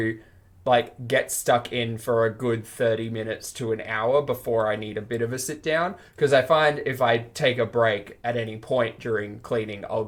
get stuck in for a good 30 minutes to an hour before I need a bit of a sit down. Because I find if I take a break at any point during cleaning, I'll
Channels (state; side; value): identical; both; correlation 1.00